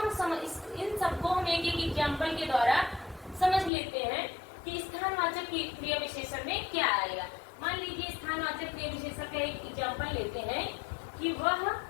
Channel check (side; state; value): right; drops out; at 3.7 s